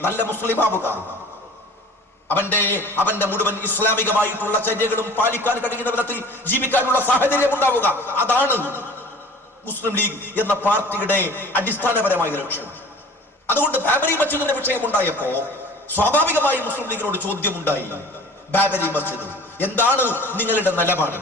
നല്ല മുസ്ലിം ആവുക, അവന്റെ മുഴുവൻ ഇസ്ലാമികമായിട്ടുള്ള ചര്യകളും പാലിക്കാൻ കഴിയുന്ന വിധത്തിൽ ജീവിക്കാനുള്ള സാഹചര്യം ഉണ്ടാവുക. അതാണ് മുസ്ലിം ലീഗ് എന്ന പാർട്ടിയുടെ അടിസ്ഥാനപരമായ ലക്ഷ്യം. അതുകൊണ്ട് ബാബരി മസ്ജിദിന്റെ വിഷയം ഉണ്ടായപ്പോ സ്വാഭാവികമായി മുസ്ലിം ലീഗിനോട് ചോദ്യമുണ്ടായി, ബാബരി മസ്ജിദ് എന്താണ് നിങ്ങളുടെ നിലപാട്?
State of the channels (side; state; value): both; normal; correlation 0.44